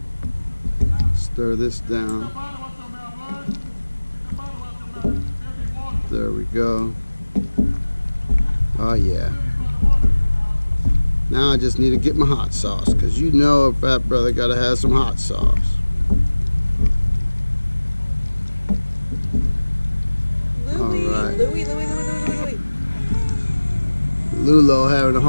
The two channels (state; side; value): inverted; both; correlation -1.00